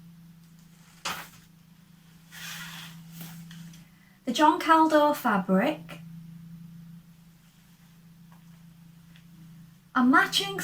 the John Kaldor fabric, a matching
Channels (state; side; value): identical; both; correlation 1.00